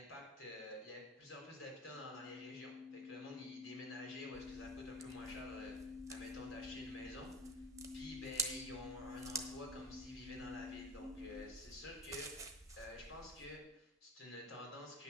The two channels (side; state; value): both; normal; correlation 0.33